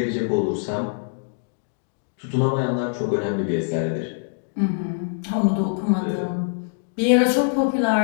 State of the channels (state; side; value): silent; right; digital silence